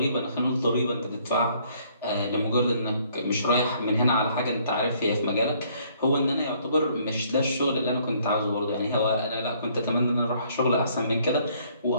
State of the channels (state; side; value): inverted; both; correlation -0.64